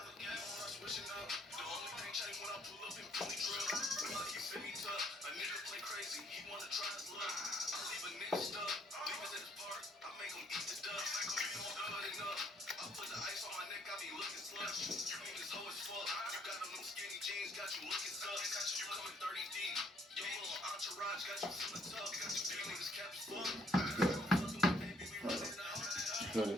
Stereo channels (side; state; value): both; normal; correlation 0.66